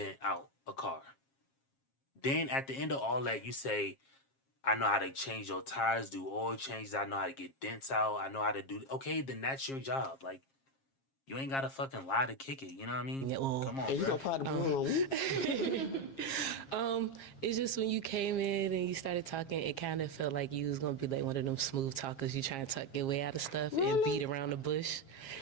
out a car. Then at the end of all that, you say, I know how to change your tires, do oil changes, I know how to get dents out, I know how to do. Okay, then that's your job. Like, you ain't gotta fucking lie to kick it. You know what I mean? Yeah, well, Come on, And you bro. gonna pop the balloon on me? It's just when you came in and you started talking, it kind of felt like you was gonna be like one of them smooth talkers. You trying to talk your way out of stuff and beat around the bush,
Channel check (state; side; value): late; right; 7.4 ms